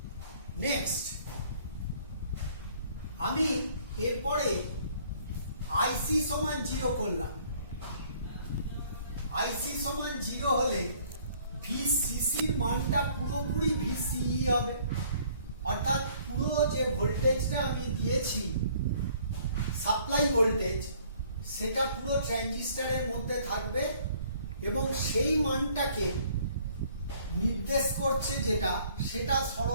নেক্সট আমি এরপরে আইসি সমান 0 করলাম। আইসি সমান 0 হলে ভিসিসির মানটা পুরোপুরি ভিসিই হবে, অর্থাৎ পুরো যে ভোল্টেজটা আমি দিয়েছি সাপ্লাই ভোল্টেজ সেটা পুরো ট্রানজিস্টরের মধ্যে থাকবে এবং সেই মানটাকে নির্দেশ করছে যেটা সেটা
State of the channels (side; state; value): both; inverted; correlation -0.59